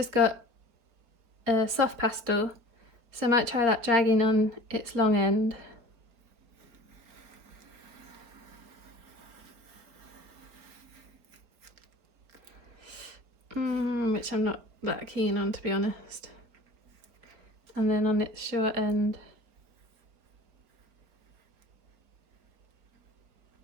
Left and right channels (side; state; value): left; late; 4.5 ms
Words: got a soft pastel, so I might try that dragging on its long end. Which I'm not that keen on, to be honest. And then on its short end,